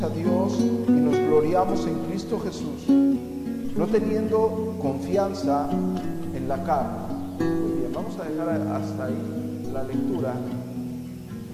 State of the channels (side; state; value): both; identical; correlation 1.00